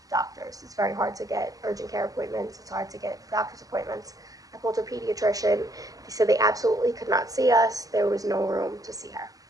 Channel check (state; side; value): late; left; 0.17 ms